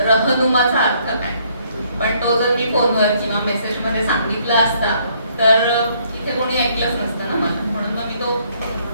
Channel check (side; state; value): both; inverted; correlation -0.66